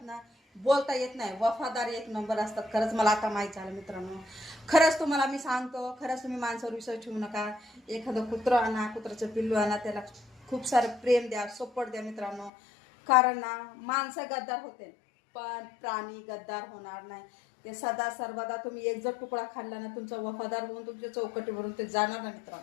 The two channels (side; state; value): right; drops out; at 12.5 s